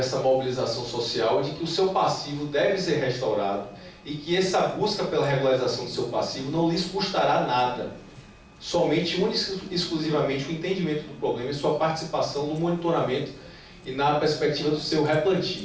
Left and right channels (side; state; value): both; identical; correlation 1.00